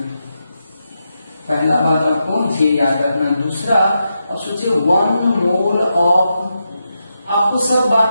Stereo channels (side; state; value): both; inverted; correlation -0.86